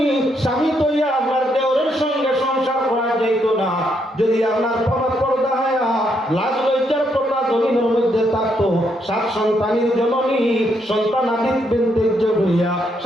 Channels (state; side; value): normal; both; correlation 0.76